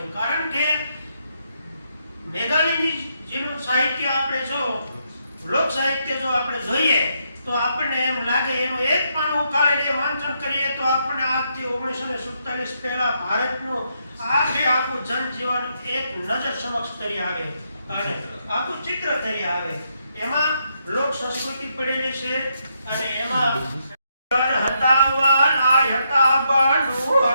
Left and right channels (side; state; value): both; inverted; correlation -0.78